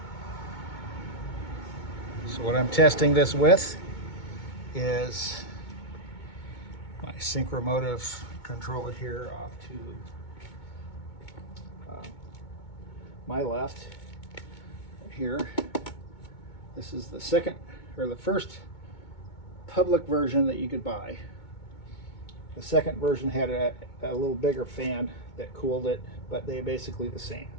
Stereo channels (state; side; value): late; right; 2.2 ms